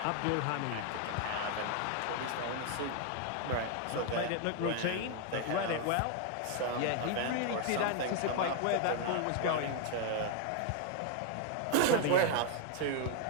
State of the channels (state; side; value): different; both; correlation 0.00